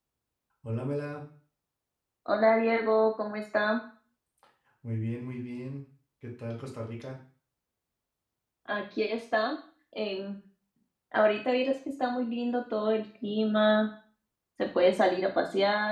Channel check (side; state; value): both; identical; correlation 1.00